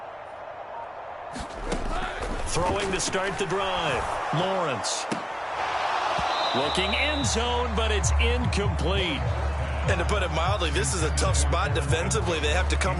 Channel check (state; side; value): identical; both; correlation 1.00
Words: Throwing to start the drive. Lawrence. Looking end zone, but it's incomplete. And to put it mildly, this is a tough spot defensively. They have to come